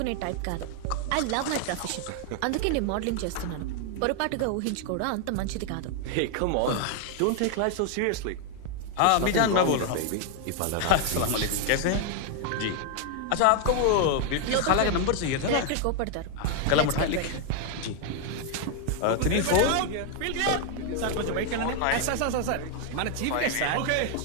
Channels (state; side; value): different; both; correlation 0.00